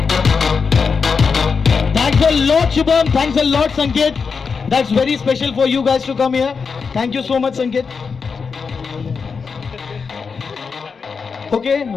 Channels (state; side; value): quieter; right; 5.4 dB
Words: Thanks a lot, Shubham. Thanks a lot, Sanket. That's very special for you guys to come here. Thank you so much, Sanket. Okay,